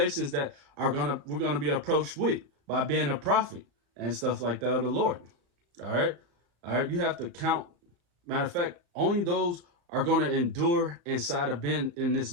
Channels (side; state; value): left; late; 35 ms